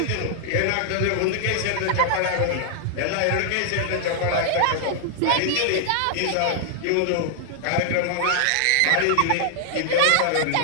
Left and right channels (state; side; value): different; both; correlation -0.01